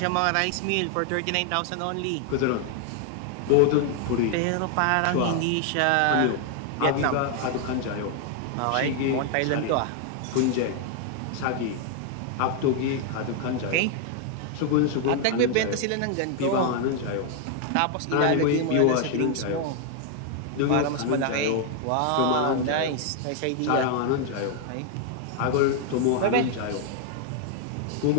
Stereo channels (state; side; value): different; both; correlation 0.00